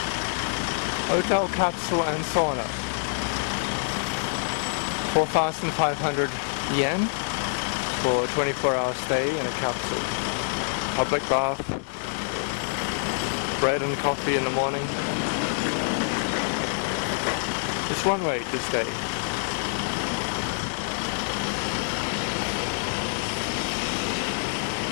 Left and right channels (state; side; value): silent; right; digital silence